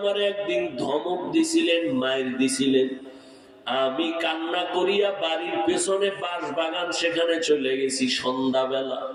একদিন ধমক দিছিলেন, মায়ের দিছিলেন, আমি কান্না করিয়া বাড়ির পেছনে বাঁশ বাগান সেখানে চলে গেছি সন্ধ্যাবেলা।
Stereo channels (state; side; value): identical; both; correlation 1.00